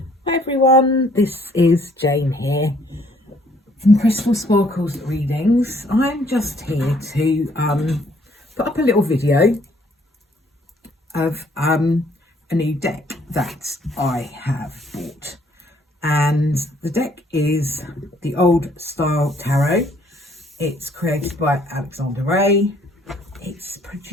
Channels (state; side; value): normal; both; correlation 0.63